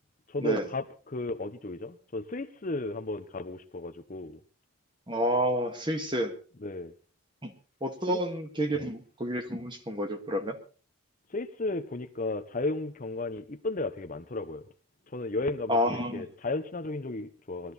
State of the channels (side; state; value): both; normal; correlation 0.24